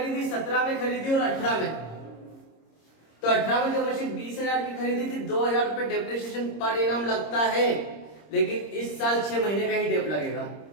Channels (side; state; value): right; late; 26 ms